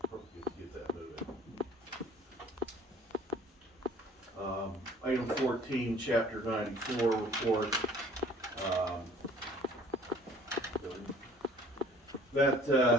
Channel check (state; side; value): normal; both; correlation 0.53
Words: get that moving. Item 14, chapter 94 report.